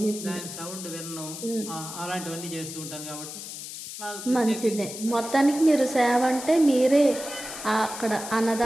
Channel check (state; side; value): noise; left; hiss, 10 dB below the sound